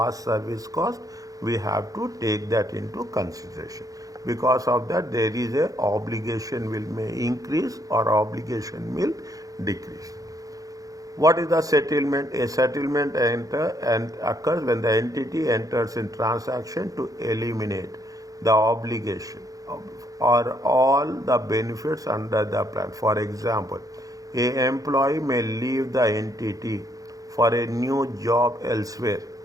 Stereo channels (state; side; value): late; left; 0.17 ms